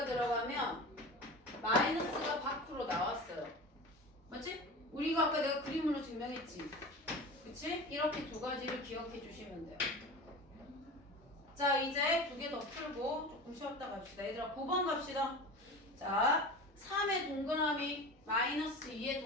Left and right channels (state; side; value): normal; both; correlation 0.32